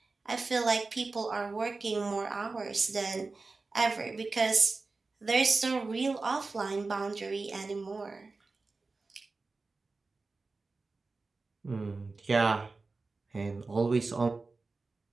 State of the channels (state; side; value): quieter; left; 3.8 dB